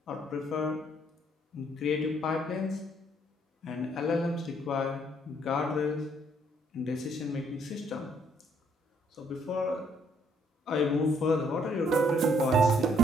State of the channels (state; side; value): normal; both; correlation 0.67